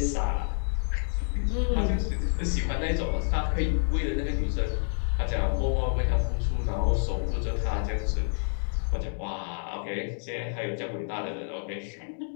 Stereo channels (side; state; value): right; silent; digital silence